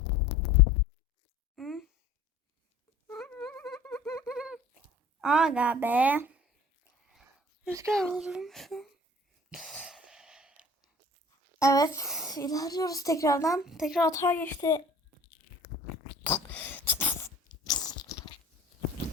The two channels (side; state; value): both; normal; correlation 0.48